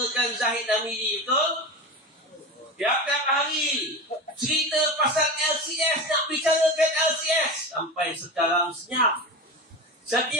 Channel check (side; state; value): both; normal; correlation 0.26